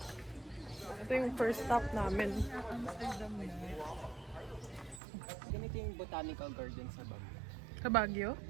Ito yung first stop namin. Ganito yung botanical garden sa Baguio. Sa Baguio?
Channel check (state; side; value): drops out; left; at 5.0 s